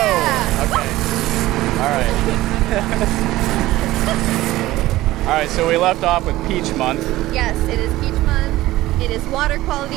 Okay. All right. All right, so we left off with Peach Month. Yes, it is Peach Month. It is Water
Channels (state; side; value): quieter; left; 16.8 dB